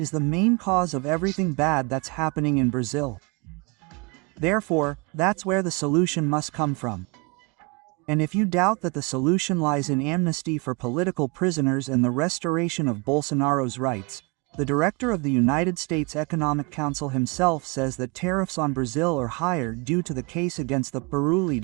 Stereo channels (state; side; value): quieter; left; 29.5 dB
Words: the main cause of everything bad that's happening in Brazil. Therefore, that's where the solution must come from. And if you doubt that the solution lies in amnesty for political prisoners and the restoration of Bolsonaro's rights, the director of the United States Economic Council himself says that tariffs on Brazil are higher due to the case against the